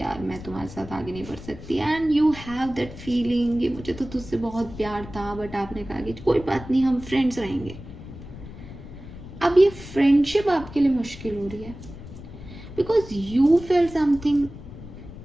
मैं तुम्हारे साथ आगे नहीं बढ़ सकती, and you have that feeling कि मुझे तो तुझसे बहुत प्यार था, बट आपने कहा कि कोई बात नहीं हम फ्रेंड्स रहेंगे. अब ये फ्रेंडशिप आपके लिए मुश्किल हो रही है because you feel something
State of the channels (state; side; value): noise; left; rumble, 14 dB below the sound